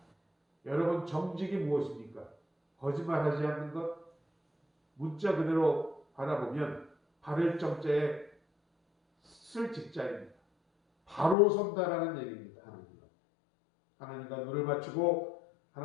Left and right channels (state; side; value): drops out; right; at 11.4 s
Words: 여러분, 정직이 무엇입니까? 거짓말하지 않는 것, 문자 그대로 바라보면 바를 정자에 쓸 직자입니다. 바로 선다라는 얘기입니다. 하나님과 눈을 맞추고